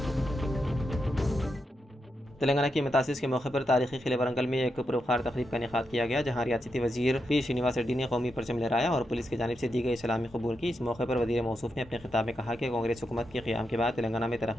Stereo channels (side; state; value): both; normal; correlation 0.85